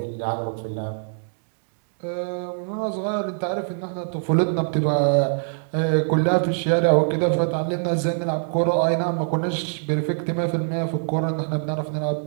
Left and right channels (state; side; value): silent; left; digital silence